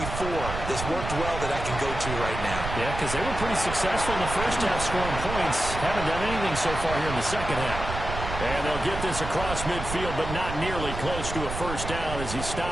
that's worked well that I can go to right now? Yeah, because they were pretty successful in the first half scoring points. Haven't done anything so far here in the second half. And they'll get this across midfield, but not nearly close to a first down as he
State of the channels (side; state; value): right; noise; rumble, 6 dB below the sound